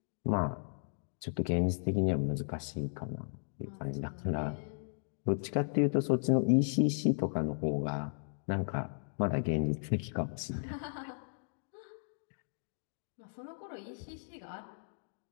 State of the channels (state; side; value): silent; right; digital silence